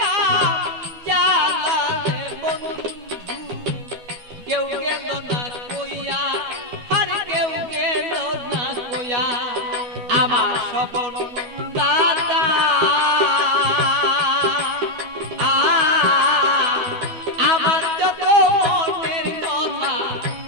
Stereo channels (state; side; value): late; left; 12 ms